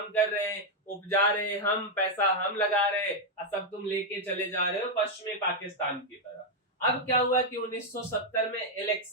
कर रहे हैं, उपजा रहे हैं हम, पैसा हम लगा रहे हैं, और सब तुम लेके चले जा रहे हो पश्चिमी पाकिस्तान की तरह। अब क्या हुआ कि 1970 में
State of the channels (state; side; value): normal; both; correlation 0.00